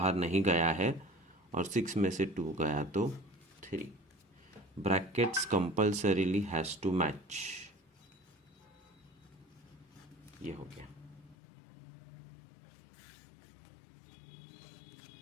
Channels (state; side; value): drops out; right; at 11.4 s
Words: नहीं गया है और 6 में से 2 गया तो 3। Brackets compulsorily has to match. ये हो गया।